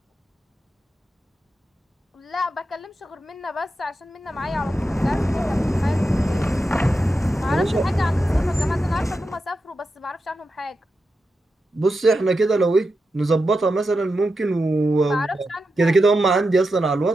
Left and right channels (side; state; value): both; normal; correlation 0.89